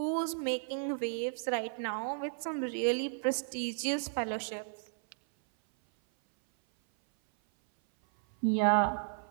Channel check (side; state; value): left; silent; 55 dB below the other